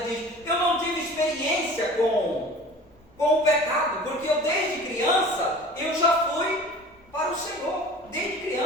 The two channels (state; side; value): normal; both; correlation 0.42